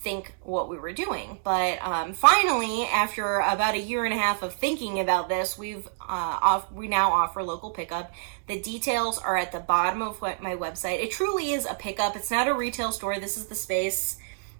what we were doing. But finally, after about a year and a half of thinking about this, we now offer local pickup. The details are at the bottom of my website. It truly is a pickup. It's not a retail store. This is the space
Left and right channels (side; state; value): left; silent; digital silence